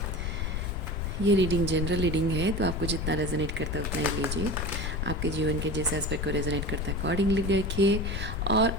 ये रीडिंग जनरल रीडिंग है, तो आपको जितना रेजोनेट करता है उतना ही लीजिए। आपके जीवन के जिस एस्पेक्ट को रेजोनेट करता है अकॉर्डिंगली देखिए। और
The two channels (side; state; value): left; noise; rumble, 2 dB below the sound